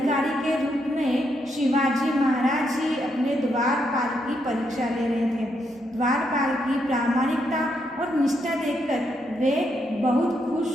के रूप में शिवाजी महाराज ही अपने द्वारपाल की परीक्षा ले रहे थे। द्वारपाल की प्रामाणिकता और निष्ठा देखकर वे बहुत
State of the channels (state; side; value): normal; both; correlation 0.78